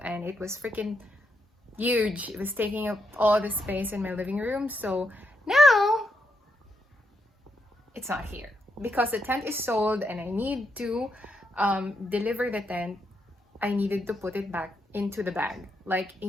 and it was freaking huge. It was taking up all the space in my living room. So now it's not here because the tent is sold and I need to deliver the tent. I needed to put it back into the bag like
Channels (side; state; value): both; normal; correlation 0.80